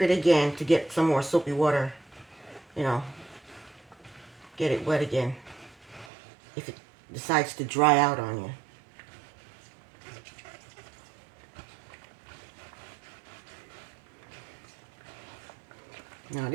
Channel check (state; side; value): drops out; left; at 6.1 s